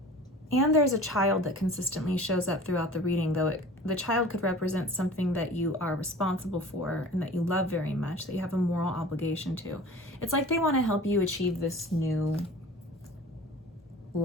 And there's a child that consistently shows up throughout the reading, though the child could represent something that you are responsible for and that you love very much, that you have a moral obligation to. It's like they want to help you achieve this new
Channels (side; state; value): both; normal; correlation 0.42